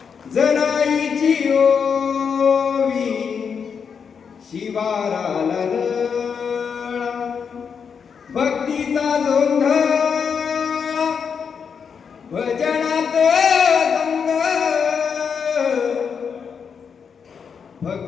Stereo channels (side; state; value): right; quieter; 6.5 dB